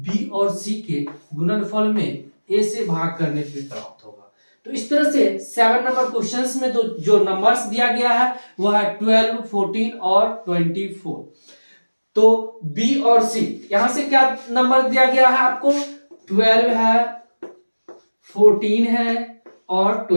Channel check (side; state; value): both; inverted; correlation -1.00